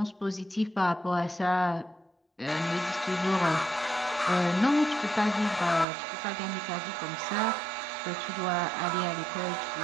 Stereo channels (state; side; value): drops out; left; at 5.9 s